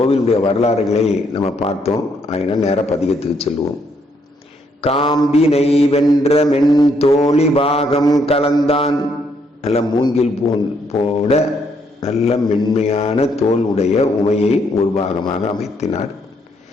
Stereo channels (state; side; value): normal; both; correlation 0.72